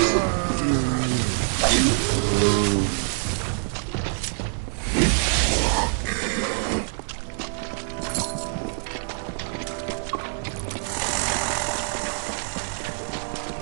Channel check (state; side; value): silent; left; digital silence